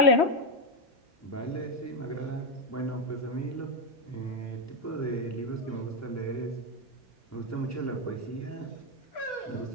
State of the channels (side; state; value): both; normal; correlation 0.07